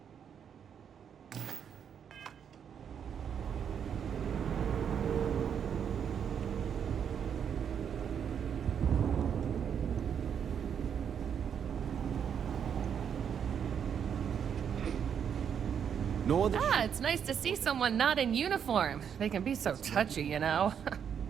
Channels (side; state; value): left; quieter; 7.9 dB